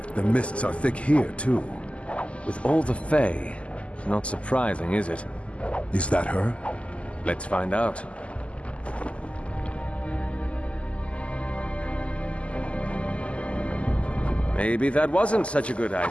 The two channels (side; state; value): right; late; 0.059 ms